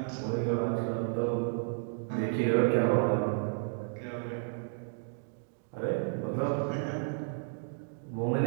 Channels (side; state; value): left; silent; digital silence